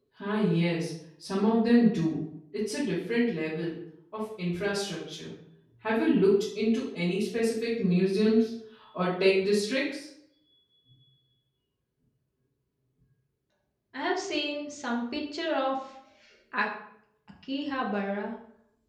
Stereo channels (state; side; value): identical; both; correlation 1.00